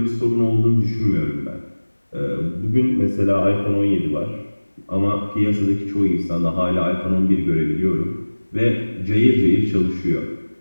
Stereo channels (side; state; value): both; inverted; correlation -1.00